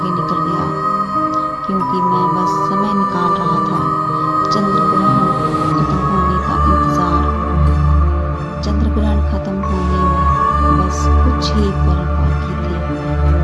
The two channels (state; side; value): identical; both; correlation 1.00